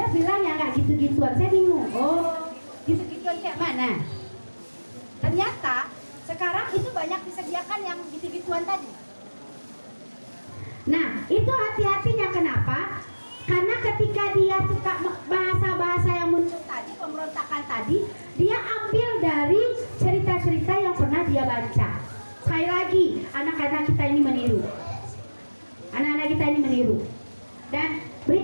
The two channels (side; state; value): both; inverted; correlation -1.00